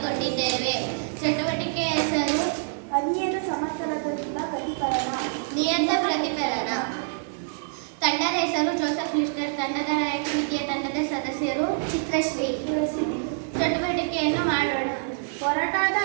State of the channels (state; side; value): silent; left; digital silence